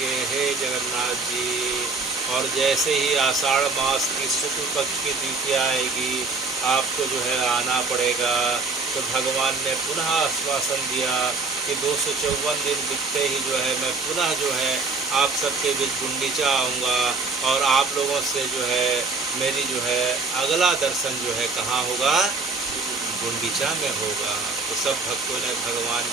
हे जगन्नाथ जी। और जैसे ही आषाढ़ मास की शुक्ल पक्ष की द्वितीया आएगी, आपको जो है आना पड़ेगा। तो भगवान ने पुनः आश्वासन दिया कि 254 दिन बीतते ही जो है मैं पुनः जो है आप सबके बीच गुंडीचा आऊँगा और आप लोगों से जो है मेरी जो है अगला दर्शन जो है कहाँ होगा? गुंडीचा में होगा। तो सब भक्तों ने भगवान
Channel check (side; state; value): left; quieter; 4.0 dB